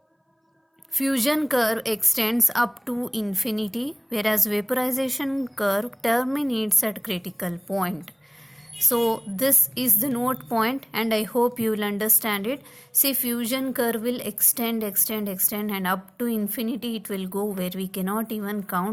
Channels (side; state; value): both; identical; correlation 1.00